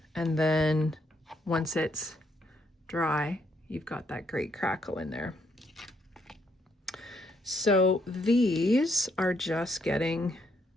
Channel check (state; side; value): normal; both; correlation 0.73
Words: And then once it's dry, you've got that great Crackle in there. So these are just getting